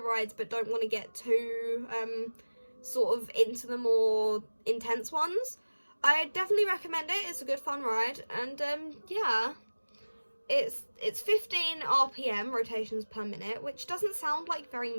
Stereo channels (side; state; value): both; inverted; correlation -1.00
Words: but don't want to get too, sort of into the more intense ones. I definitely recommend it. It's a good fun ride, and yeah, it's 15 RPM rotations per minute, which doesn't sound like very